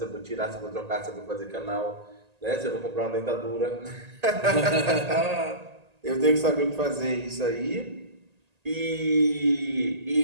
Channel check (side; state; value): left; late; 1.8 ms